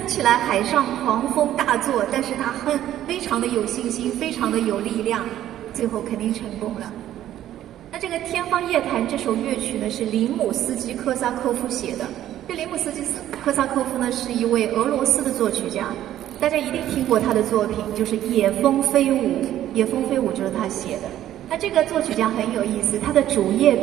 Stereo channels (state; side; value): quieter; left; 12.4 dB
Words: 起来海上狂风大作，但是他非常的有信心，非常的有力量，最后肯定成功了。那这个《天方夜谭》这首乐曲呢，是林姆斯基科萨科夫写的。这林姆斯基科萨科夫呢，是一位俄罗斯的作曲家，大家一定听过他的作品，就是《野蜂飞舞》。《野蜂飞舞》就是他写的。那这个作曲家很有意思，他的主业